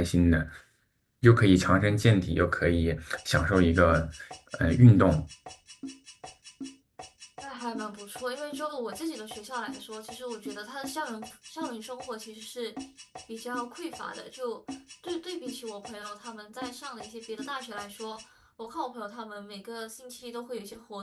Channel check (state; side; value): identical; both; correlation 1.00